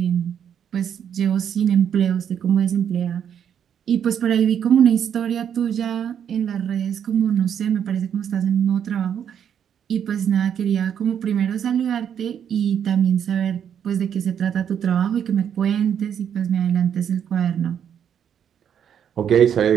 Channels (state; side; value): quieter; left; 8.6 dB